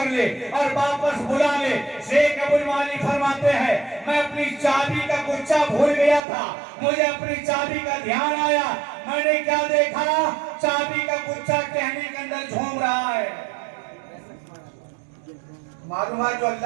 ले और वापस बुला ले। शेख अबुल माली फरमाते हैं मैं अपनी चाबी का गुच्छा भूल गया था, मुझे अपनी चाबी का ध्यान आया, मैंने क्या देखा, चाबी का गुच्छा टहनी के अंदर झूम रहा है। मालूम है जो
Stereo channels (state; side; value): drops out; left; at 6.2 s